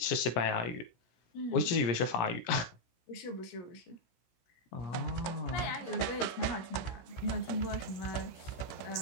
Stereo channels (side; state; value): right; late; 17 ms